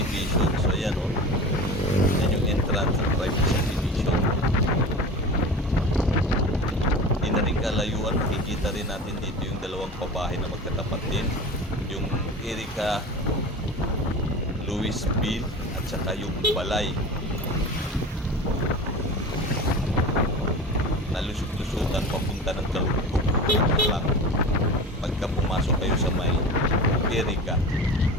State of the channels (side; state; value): both; normal; correlation 0.33